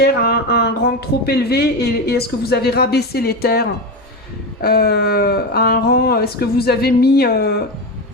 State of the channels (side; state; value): both; normal; correlation 0.17